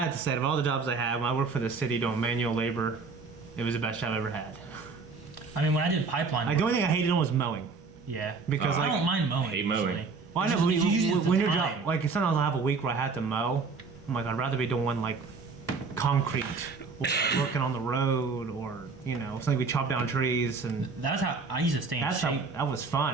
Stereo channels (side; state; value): left; quieter; 4.6 dB